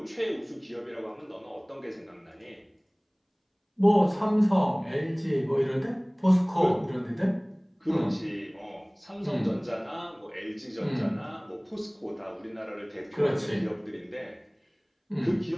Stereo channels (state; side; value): identical; both; correlation 1.00